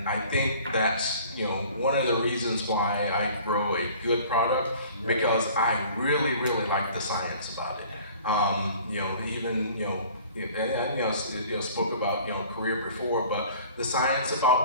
I think that's one of the reasons why I grow a good product, because I really like the science about it. Spoke about career before, but the science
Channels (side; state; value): both; inverted; correlation -0.49